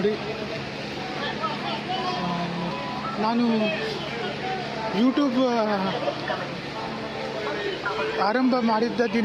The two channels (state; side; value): identical; both; correlation 1.00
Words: ನಾನು ಯೂಟ್ಯೂಬ್ ಆರಂಭ ಮಾಡಿದ್ದ